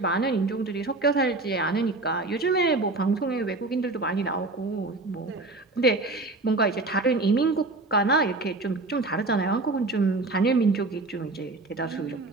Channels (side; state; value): left; quieter; 3.2 dB